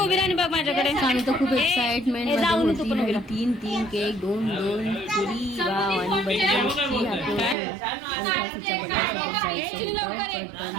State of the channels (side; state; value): left; drops out; at 7.6 s